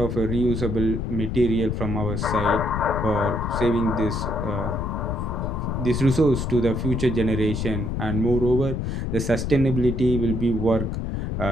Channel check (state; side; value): noise; left; rumble, 2 dB below the sound